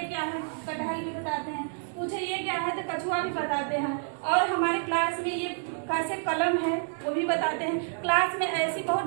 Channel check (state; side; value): silent; left; 59 dB below the other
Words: क्या है, कटहल भी बताते हैं, पूछे ये क्या है तो कछुआ भी बताते हैं। और हमारे क्लास में ये कैसे कलम है वो भी बताते हैं। क्लास में ऐसी